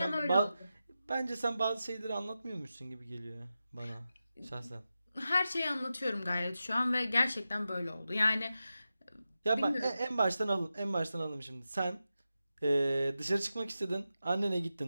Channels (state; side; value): inverted; both; correlation -0.92